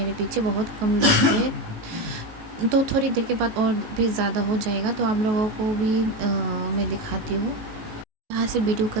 पीछे बहुत कम लोग है। तो थोड़ी देर के बाद और भी ज़्यादा हो जाएगा, तो आप लोगों को भी मैं दिखाती हूँ। यहाँ से वीडियो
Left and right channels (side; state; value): left; late; 19 ms